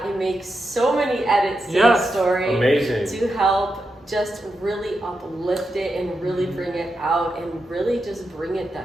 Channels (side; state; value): both; normal; correlation 0.87